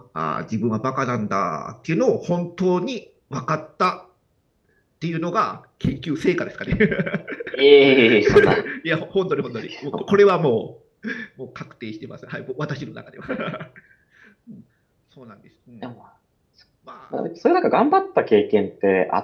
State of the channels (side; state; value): both; identical; correlation 1.00